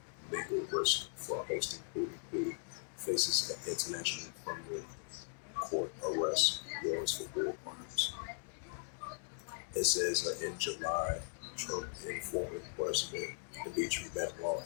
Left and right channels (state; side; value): silent; right; digital silence